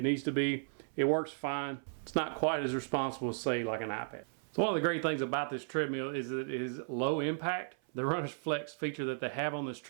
needs to be. It works fine. It's not quite as responsible as, say, like an iPad. So one of the great things about this treadmill is that it is low impact. The runner's flex feature that they have on this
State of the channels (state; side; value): silent; left; 54 dB below the other